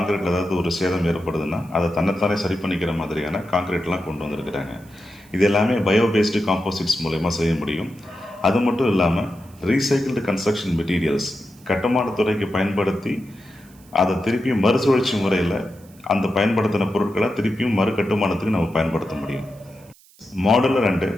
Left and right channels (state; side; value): noise; right; hiss, 27 dB below the sound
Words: ஏதாவது ஒரு சேதம் ஏற்படுதுன்னா அதை தன்னைத்தானே சரி பண்ணிக்கிற மாதிரியான கான்கிரீட்லாம் கொண்டு வந்திருக்கிறாங்க. இது எல்லாமே பயோபேஸ்டு காம்போசிட்ஸ் மூலயமா செய்ய முடியும். அது மட்டும் இல்லாமல் ரீசைக்கிள்டு கன்ஸ்ட்ரக்ஷன் மெட்டீரியல்ஸ், கட்டுமானத்துறைக்கு பயன்படுத்தி அதை திருப்பியும் மறுசுழற்சி முறையில் அந்த பயன்படுத்தின பொருட்களை திருப்பியும் மறு கட்டுமானத்துக்கு நம்ம பயன்படுத்த முடியும். மாடுலர் அண்டு